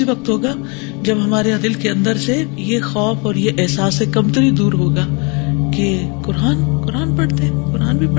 وقت ہوگا جب ہمارے دل کے اندر سے یہ خوف اور یہ احساس کمتری دور ہوگا کہ قرآن پڑھتے ہیں، قرآن بھی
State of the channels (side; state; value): right; quieter; 31.7 dB